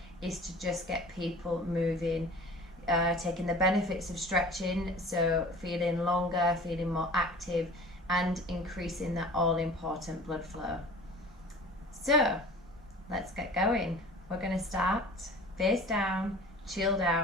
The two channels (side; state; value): both; normal; correlation 0.43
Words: is to just get people moving, taking the benefits of stretching, so feeling longer, feeling more active, and increasing that all-important blood flow. So let's get going. We're going to start face down, chilled